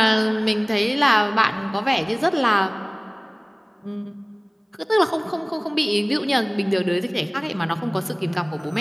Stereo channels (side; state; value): both; identical; correlation 1.00